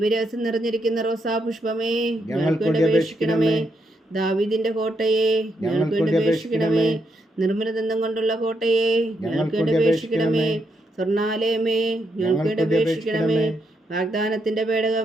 നിറഞ്ഞിരിക്കുന്ന റോസാ പുഷ്പമേ ഞങ്ങൾക്ക് വേണ്ടി അപേക്ഷിക്കണമേ. ദാവീദിന്റെ കോട്ടയെ ഞങ്ങൾക്ക് വേണ്ടി അപേക്ഷിക്കണമേ. നിർമ്മലദന്തം കൊണ്ടുള്ള കോട്ടയെ ഞങ്ങൾക്ക് വേണ്ടി അപേക്ഷിക്കണമേ. സ്വർണാലയമേ ഞങ്ങൾക്ക് വേണ്ടി അപേക്ഷിക്കണമേ. വാഗ്ദാനത്തിന്റെ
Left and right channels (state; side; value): normal; both; correlation 0.80